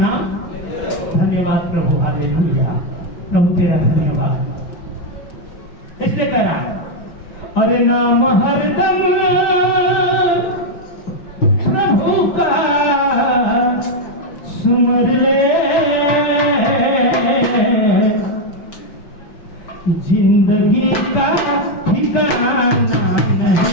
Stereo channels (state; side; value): late; right; 5.9 ms